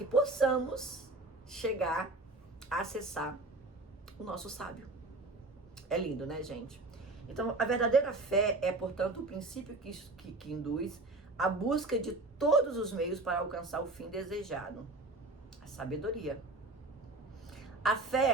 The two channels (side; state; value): left; quieter; 3.0 dB